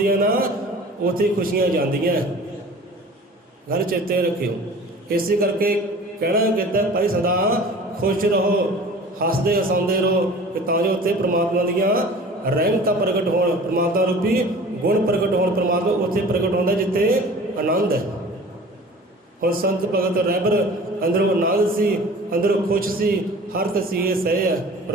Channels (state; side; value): normal; both; correlation 0.43